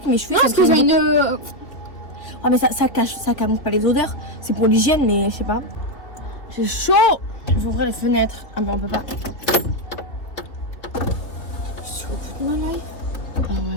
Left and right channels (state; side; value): late; right; 3.1 ms